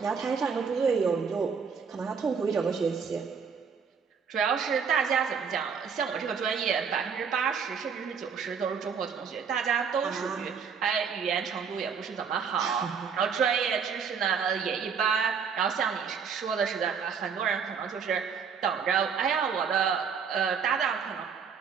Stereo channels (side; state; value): left; quieter; 6.4 dB